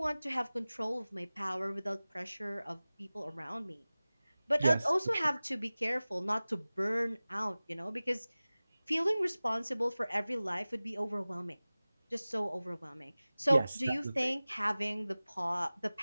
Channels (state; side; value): inverted; both; correlation -0.98